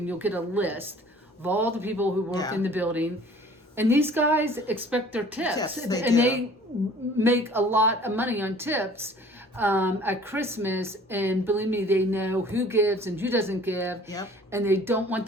you'll get a list of all the people who work in the building. And these guys expect their tips. Yes, they make a lot of money on tips at Christmas. And believe me, they know who gives and who doesn't give. Yep. And they don't want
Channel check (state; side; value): normal; both; correlation 0.50